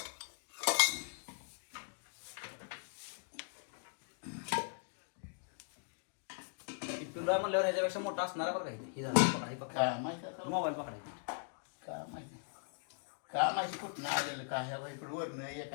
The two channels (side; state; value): right; silent; digital silence